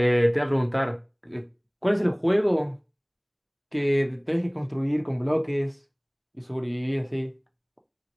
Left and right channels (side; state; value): both; identical; correlation 1.00